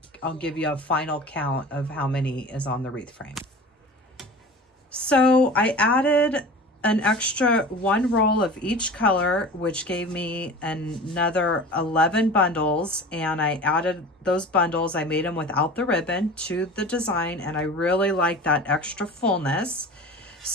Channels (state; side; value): normal; both; correlation 0.37